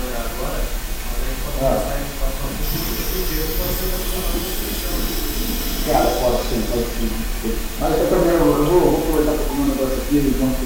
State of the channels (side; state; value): both; identical; correlation 1.00